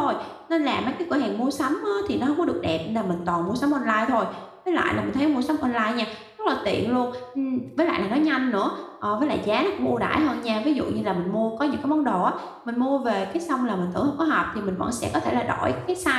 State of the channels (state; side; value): identical; both; correlation 1.00